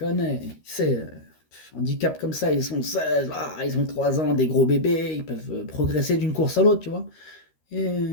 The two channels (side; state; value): right; late; 13 ms